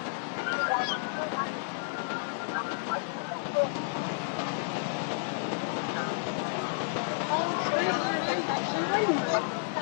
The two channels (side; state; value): right; silent; digital silence